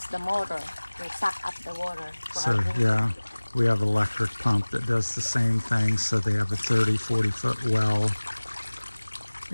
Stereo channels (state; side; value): inverted; both; correlation -1.00